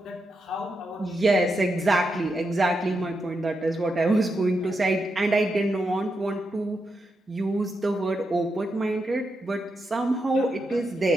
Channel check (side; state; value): both; normal; correlation 0.85